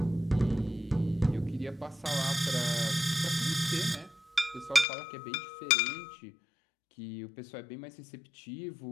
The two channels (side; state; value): right; drops out; at 4.9 s